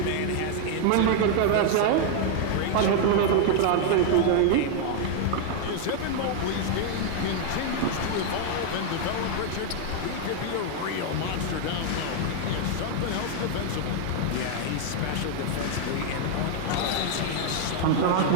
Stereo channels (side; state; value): both; different; correlation 0.00